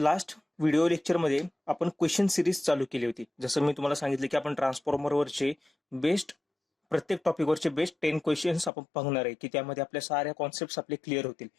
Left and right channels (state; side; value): drops out; right; at 8.7 s